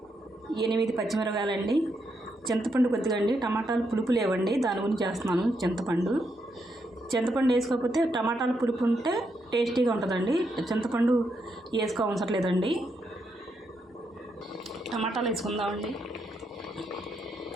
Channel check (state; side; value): normal; both; correlation 0.80